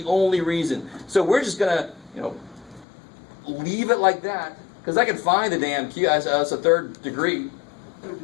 only reason. So we're just going to, leave it like that. Because I can find the damn q as a third degree. Third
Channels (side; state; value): right; drops out; at 2.9 s